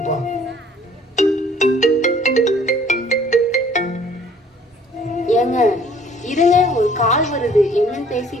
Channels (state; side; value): normal; both; correlation 0.56